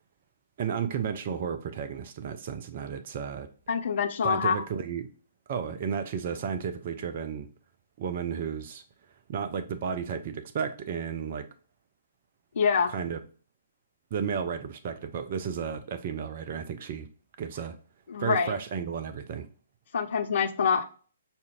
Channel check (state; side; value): inverted; both; correlation -0.53